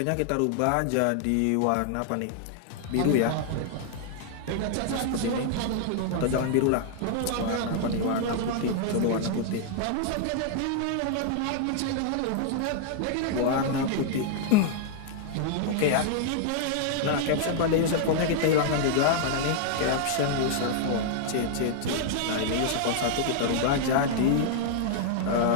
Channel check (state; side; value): different; both; correlation -0.01